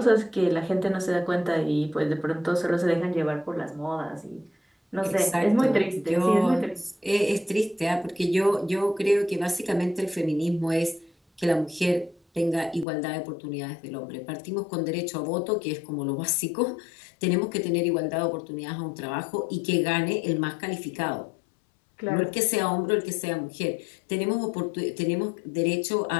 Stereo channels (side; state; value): right; drops out; at 12.9 s